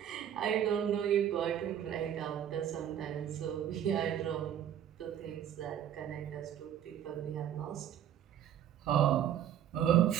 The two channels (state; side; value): quieter; left; 10.0 dB